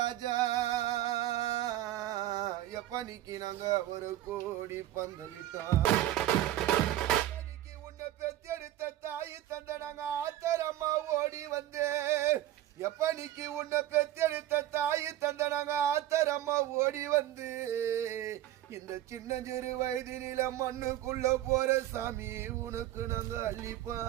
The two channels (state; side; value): quieter; left; 13.6 dB